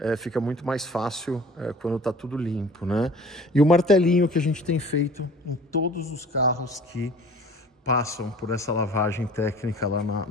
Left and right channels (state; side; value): normal; both; correlation 0.46